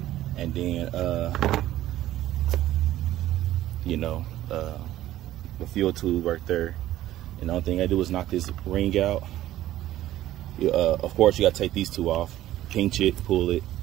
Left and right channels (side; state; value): left; quieter; 14.1 dB